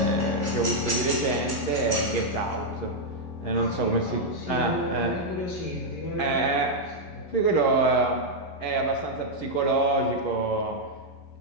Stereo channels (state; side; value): late; right; 11 ms